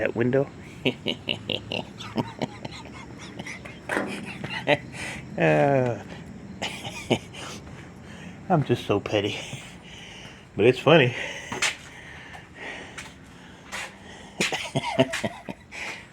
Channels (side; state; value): both; identical; correlation 1.00